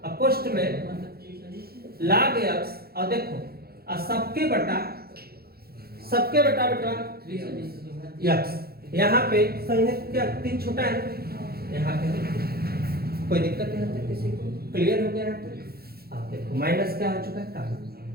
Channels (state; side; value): late; left; 0.45 ms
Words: कोष्ट में log x, और देखो और सबके बटा बेटा x, यहाँ पे संयुक्त क्या 3 छोटा है, यहाँ पे कोई दिक्कत नहीं है किसी को, क्लियर हो गया है तो आप देखो माइनस क्या हो चुका है कॉमन,